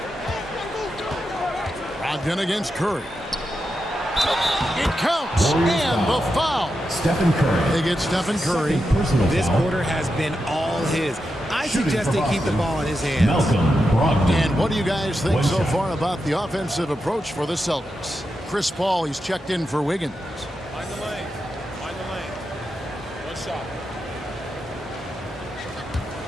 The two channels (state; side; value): normal; both; correlation 0.88